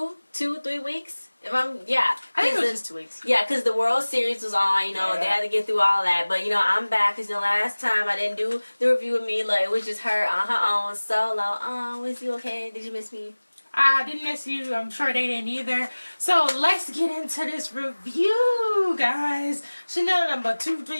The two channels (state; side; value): inverted; both; correlation -1.00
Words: weeks? I think it was just 2 weeks. Yeah, because the World Series was on, they had to get through all that. But, I'm back because, last time I didn't do the review with Mila. It was just her on her own, solo. Was you okay? Did you miss me? I didn't miss you. I'm sure they didn't either. So let's get into this review, guys. Chanel number 2,